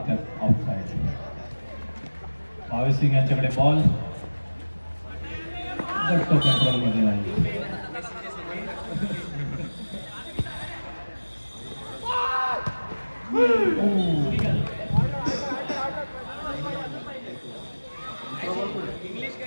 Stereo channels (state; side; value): inverted; both; correlation -1.00